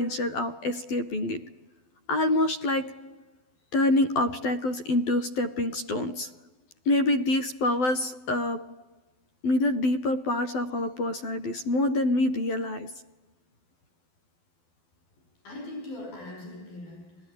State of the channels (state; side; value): late; right; 12 ms